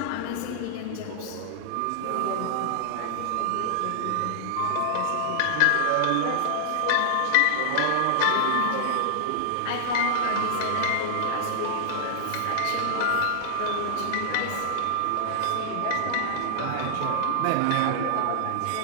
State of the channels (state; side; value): different; both; correlation -0.01